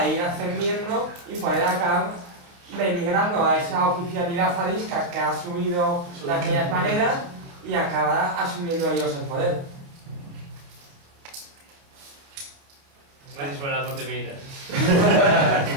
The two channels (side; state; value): left; late; 28 ms